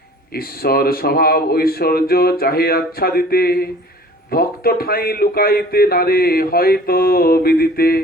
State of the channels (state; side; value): normal; both; correlation 0.48